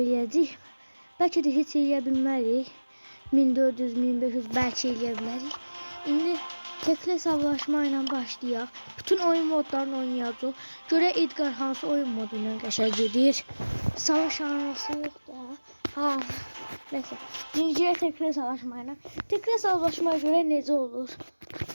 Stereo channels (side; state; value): both; inverted; correlation -1.00